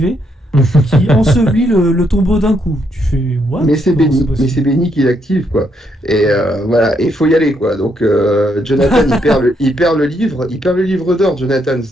qui ensevelit le tombeau d'un coup. Tu fais, what? Mais c'est Benny qui l'active, quoi. Et voilà, et il faut y aller, quoi. Donc, Jonathan, il perd le livre d'or, Jonathan,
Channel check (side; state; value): both; normal; correlation 0.76